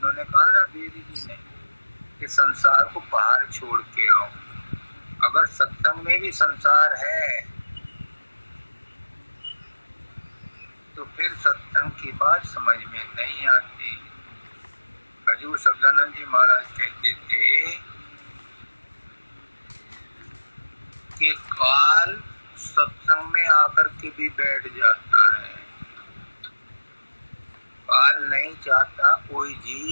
कहा ना देवी जी ने कि संसार को बाहर छोड़ के आओ। अगर सत्संग में भी संसार है तो फिर सत्संग की बात समझ में नहीं आती। हजूर सब्दानंद जी महाराज कहते थे कि काल सत्संग में आकर के भी बैठ जाता है। काल नहीं चाहता कोई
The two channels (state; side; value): inverted; both; correlation -1.00